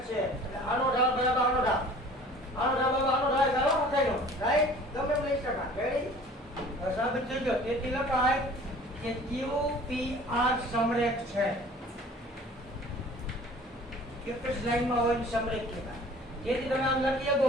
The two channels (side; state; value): both; normal; correlation 0.48